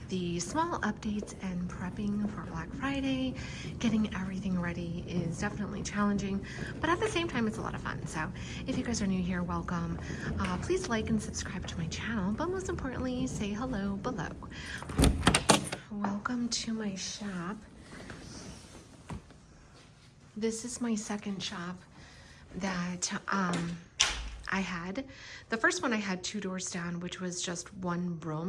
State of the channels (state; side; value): identical; both; correlation 1.00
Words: the small updates and prepping for Black Friday. Getting everything ready is definitely challenging, but at the same time it's a lot of fun. So if you guys are new here, welcome. Please like and subscribe to my channel, but most importantly say hello below. Welcome to my shop. This is my second shop that I had. The first one I had 2 doors down, which was just one